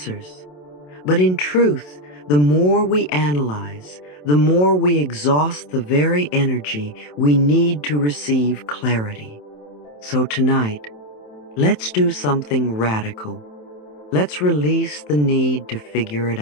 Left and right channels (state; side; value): late; right; 27 ms